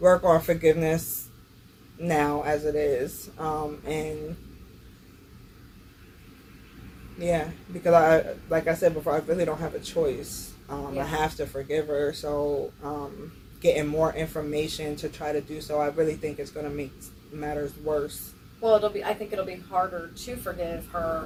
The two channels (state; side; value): identical; both; correlation 1.00